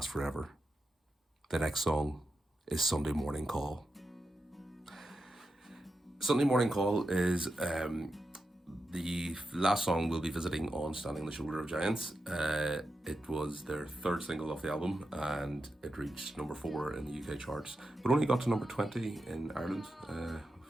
forever. The next song is Sunday Morning Call. Sunday Morning Call is the last song we'll be visiting on Standing on the Shoulder of Giants. It was their third single off the album and it reached number 4 in the UK charts, but only got to number 20 in Ireland.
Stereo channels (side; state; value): both; normal; correlation 0.88